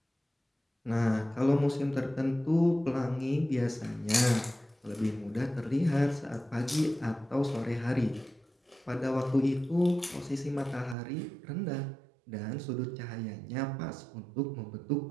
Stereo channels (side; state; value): left; drops out; at 11.0 s